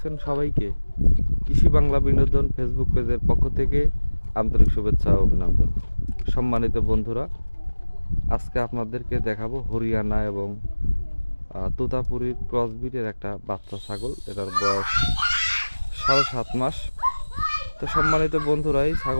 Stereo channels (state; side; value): inverted; both; correlation -1.00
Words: সবাইকে কৃষি বাংলা বিনোদন ফেসবুক পেজের পক্ষ থেকে আন্তরিক শুভেচ্ছা ও অভিনন্দন। সম্মানিত বন্ধুরা, আজকে আপনাদেরকে দেখাবো হরিয়ানা এবং তোতাপুরীর ক্রসবিটের একটা বাচ্চা ছাগল। এটার বয়স 7.5 মাস। তো সম্মানিত বন্ধুরা, এই